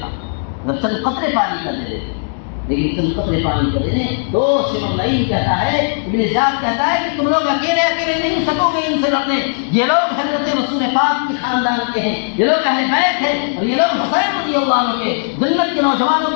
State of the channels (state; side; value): silent; right; digital silence